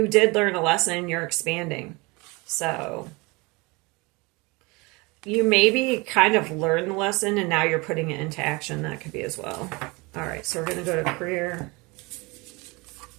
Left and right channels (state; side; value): quieter; left; 25.9 dB